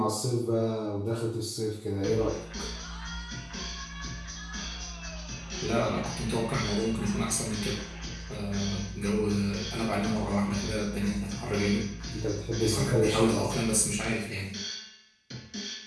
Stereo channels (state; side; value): identical; both; correlation 1.00